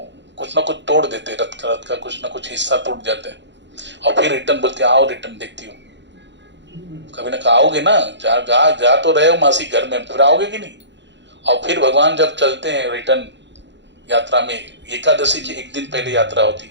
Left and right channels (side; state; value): left; late; 0.52 ms